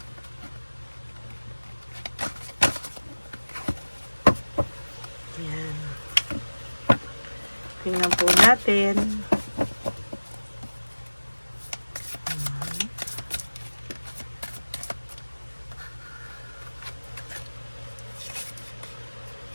Yan. Tingnan po natin.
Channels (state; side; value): inverted; both; correlation -1.00